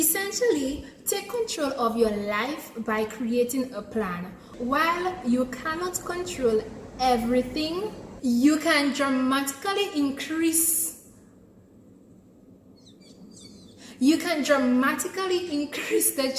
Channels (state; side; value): identical; both; correlation 1.00